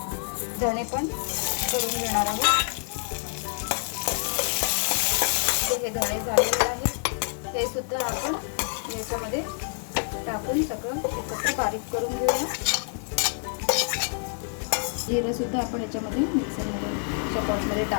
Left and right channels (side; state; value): right; silent; 60 dB below the other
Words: धणे पण करून घेणार आहोत. हे धणे झालेले आहे, हे सुद्धा आपण याच्यामध्ये टाकून सगळं एकत्र बारीक करून घेऊया. जिरं सुद्धा आपण याच्यामध्ये मिक्सरमध्ये पॉटमध्ये